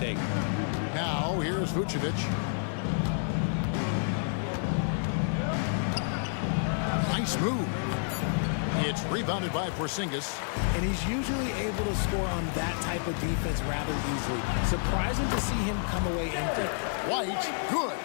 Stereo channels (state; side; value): silent; right; digital silence